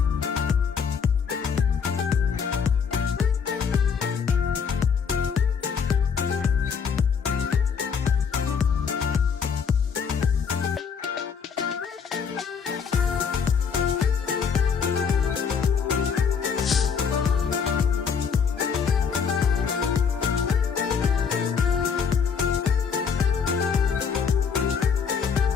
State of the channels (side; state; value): right; quieter; 6.4 dB